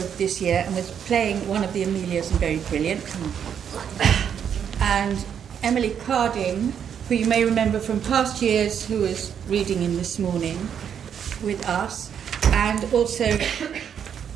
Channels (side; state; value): left; quieter; 8.3 dB